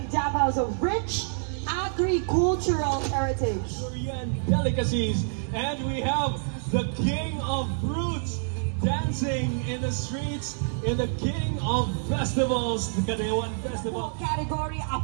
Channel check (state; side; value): silent; left; digital silence